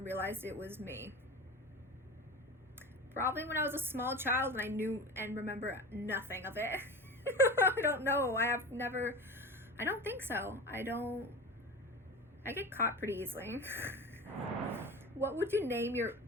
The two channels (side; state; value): both; normal; correlation 0.30